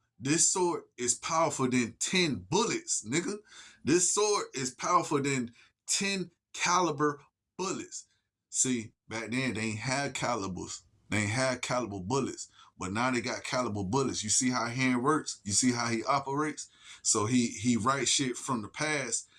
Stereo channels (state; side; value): identical; both; correlation 1.00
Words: this sword is powerful than 10 bullets, nigga. This sword is powerful than 10 caliber bullets. See, back then they ain't had calibers. They ain't had caliber bullets. But now they got caliber bullets. You see how hand works? You see how he operates? So he writes shit from the past